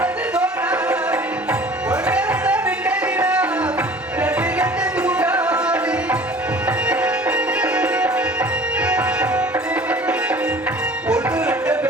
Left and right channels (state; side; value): normal; both; correlation 0.46